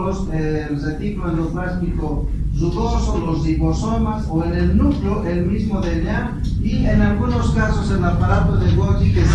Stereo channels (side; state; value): both; identical; correlation 1.00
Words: el retículo endoplásmico rugoso, los ribosomas o en el núcleo el mismo DNA y en algunos casos el aparato de Golgi que